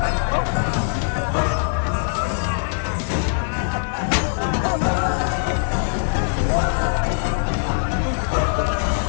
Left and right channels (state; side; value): silent; right; 64 dB below the other